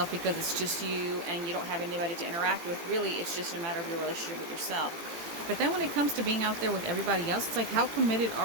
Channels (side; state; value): left; late; 18 ms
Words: because it's just you and you don't have anybody to interact with. Really, it's just a matter of your relationship with yourself. But then when it comes to being out there with everybody else, it's like, how committed